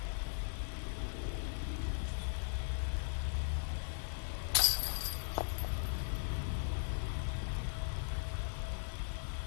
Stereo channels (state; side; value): silent; right; digital silence